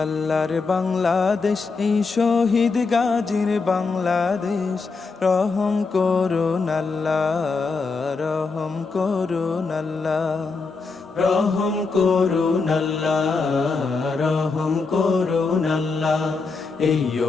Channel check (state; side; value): quieter; right; 4.3 dB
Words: আল্লাহর বাংলাদেশ, এই শহীদ গাজীর বাংলাদেশ, রহম করুন আল্লাহ, রহম করুন আল্লাহ, রহম করুন আল্লাহ, রহম করুন আল্লাহ। এই